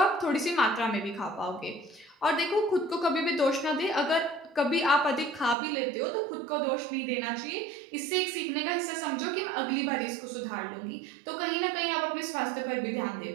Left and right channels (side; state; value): left; drops out; at 5.6 s